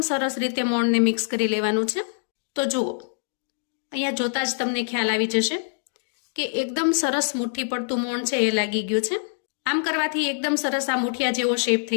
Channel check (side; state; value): right; silent; digital silence